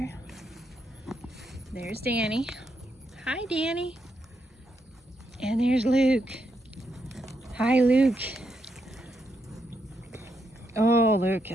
There's Danny. Hi, Danny. And there's Luke. Hi, Luke. Oh, Luke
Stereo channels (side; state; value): both; normal; correlation 0.80